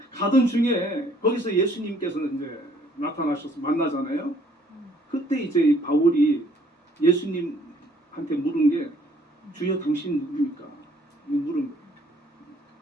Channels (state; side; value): normal; both; correlation 0.62